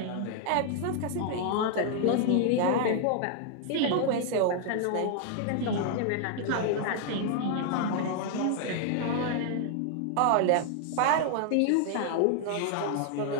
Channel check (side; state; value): both; different; correlation 0.00